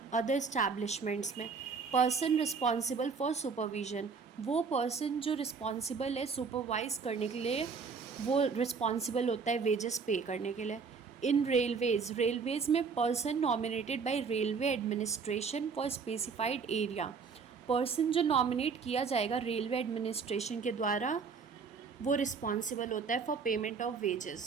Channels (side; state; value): left; quieter; 5.4 dB